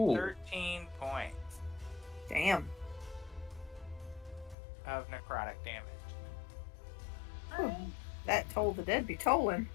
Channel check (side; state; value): right; drops out; at 4.5 s